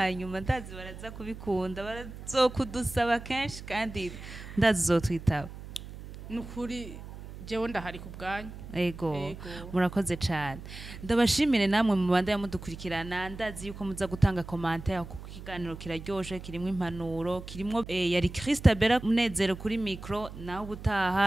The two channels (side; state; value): right; noise; hum, 13 dB below the sound